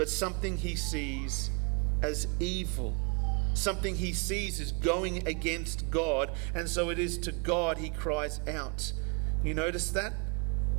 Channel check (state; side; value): quieter; left; 34.6 dB